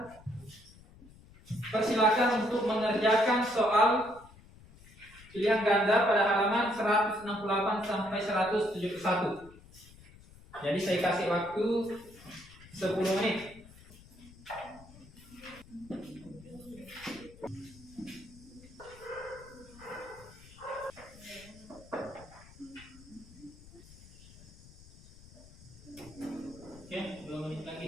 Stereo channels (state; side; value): noise; left; rumble, 22 dB below the sound